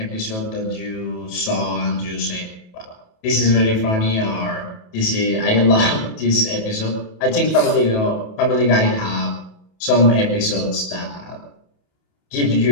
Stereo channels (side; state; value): right; late; 28 ms